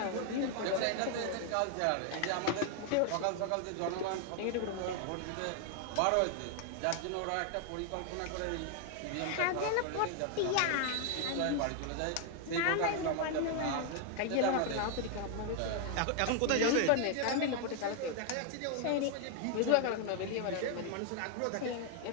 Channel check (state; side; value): different; both; correlation 0.00